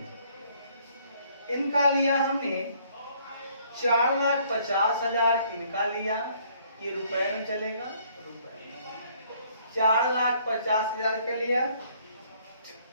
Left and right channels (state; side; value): inverted; both; correlation -0.63